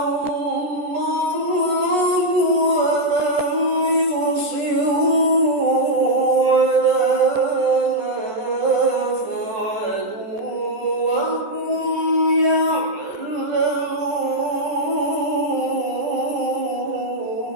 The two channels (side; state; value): left; late; 14 ms